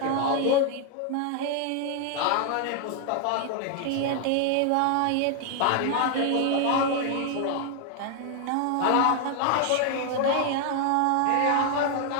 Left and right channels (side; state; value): both; different; correlation 0.00